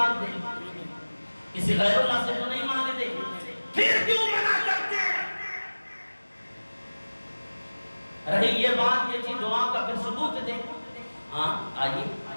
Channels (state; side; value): inverted; both; correlation -1.00